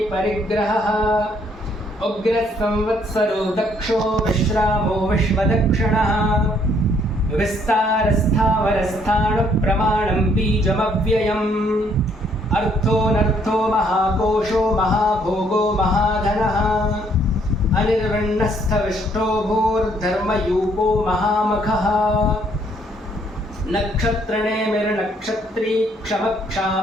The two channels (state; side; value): normal; both; correlation 0.67